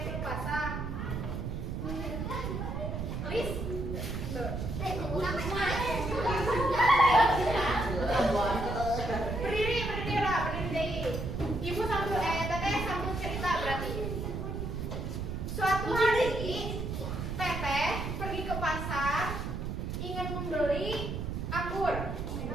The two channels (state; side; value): noise; right; rumble, 4 dB below the sound